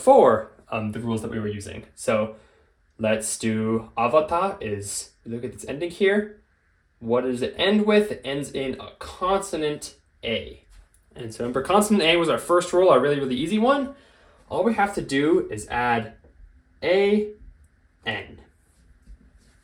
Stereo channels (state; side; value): identical; both; correlation 1.00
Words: the rules that we were using. So let's do avata is, look at this ending here. What does it end with? It ends in a consonant A. And so remember, consonant A was our first rule, our really, really easy one. All we have to do is add A, N.